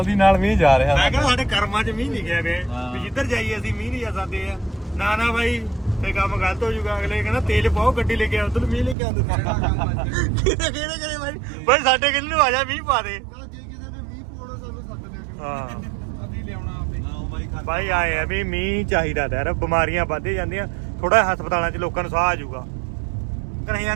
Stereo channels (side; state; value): left; drops out; at 9.0 s